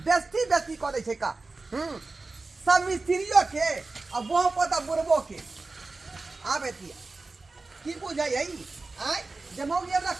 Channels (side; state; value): left; quieter; 3.6 dB